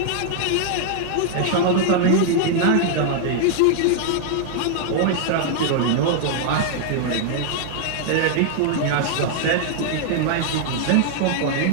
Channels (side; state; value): both; different; correlation -0.01